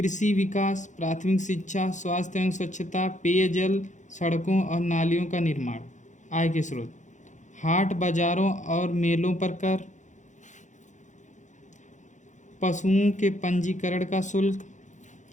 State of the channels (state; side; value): late; right; 0.35 ms